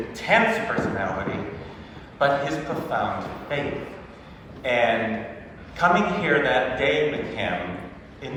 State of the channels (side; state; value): both; identical; correlation 1.00